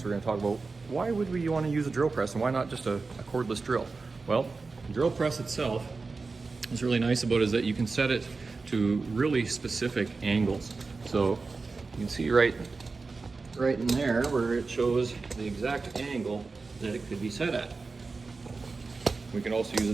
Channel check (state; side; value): quieter; left; 4.1 dB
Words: We're going to talk about why would we want to use a drill press and why not just a cordless drill. Well, the drill press itself, what's really nice about it is that you can set it to really specific angles. So you can see right in there where it shows the exact angle that it could be set at. We can also use a